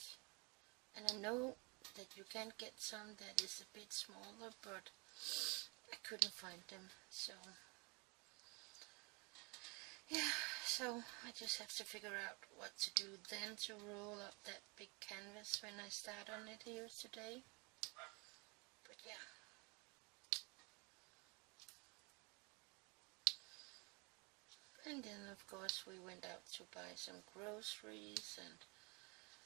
And I know that you can get some that is a bit smaller, but I couldn't find them. So yeah, so I just have to figure out what to do then to roll up that big canvas when I start on it here today. But yeah. And then of course we went out to buy some groceries, and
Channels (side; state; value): left; quieter; 30.3 dB